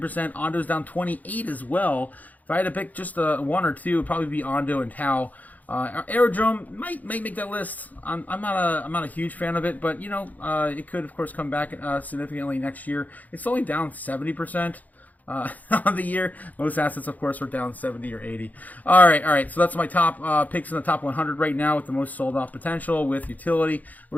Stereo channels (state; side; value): late; right; 0.079 ms